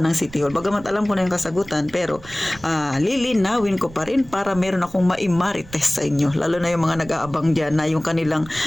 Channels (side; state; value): right; noise; rumble, 19 dB below the sound